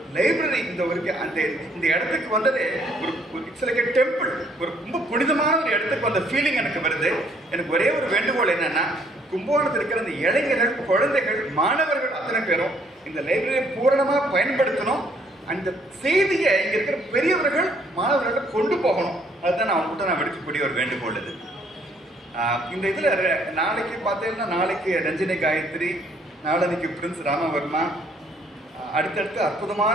லைப்ரரி இந்த இடத்துக்கு வந்ததே ஒரு இட்ஸ் லைக் எ டெம்பிள். ஒரு ரொம்ப புனிதமான ஒரு இடத்துக்கு வந்த ஃபீலிங் எனக்கு வருது. எனக்கு ஒரே ஒரு வேண்டுகோள் என்னன்னா, கும்பகோணத்தில் இருக்கிற அந்த இளைஞர்கள், குழந்தைகள், மாணவர்கள் அத்தனை பேரும் இந்த லைப்ரரியை பூரணமாக பயன்படுத்தணும். அந்த செய்தியை இங்கே இருக்கிற பெரியவர்கள் மாணவர்கள் கொண்டு போகணும். அதுதான் நான் அவங்ககிட்ட விடுக்கக்கூடிய ஒரு வேண்டுகோள் இது. இந்த இதில் நாளைக்கு பார்த்தீங்கன்னா, நாளைக்கு ரஞ்சினி காயத்ரி, நாளன்னைக்கு பிரின்ஸ் ராமவர்மா, அடுத்தடுத்து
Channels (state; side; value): normal; both; correlation 0.65